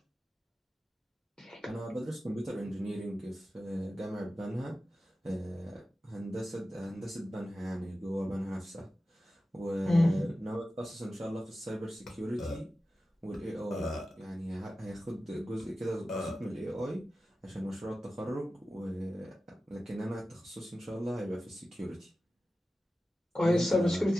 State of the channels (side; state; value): both; normal; correlation 0.94